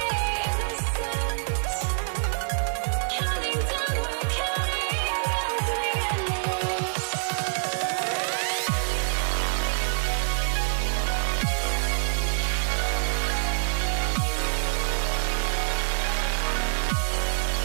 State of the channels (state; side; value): silent; left; 61 dB below the other